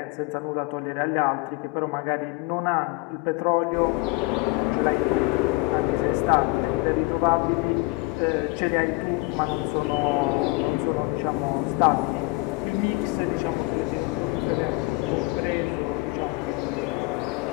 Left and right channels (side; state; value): right; quieter; 24.1 dB